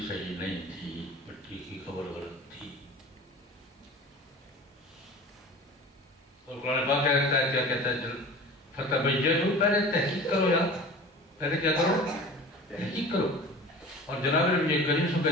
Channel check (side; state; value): both; normal; correlation 0.38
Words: صحیح نہیں تھی، پٹی کی خبر غلط تھی۔ اور قرآن پاک کہتا ہے، کیا کہتا ہے؟ فتبینوا، پہلے تحقیق کرو یار، پہلے کیا کرو؟ تحقیق کرو۔ اور جناب نبی کریم صلی اللہ علیہ وسلم کا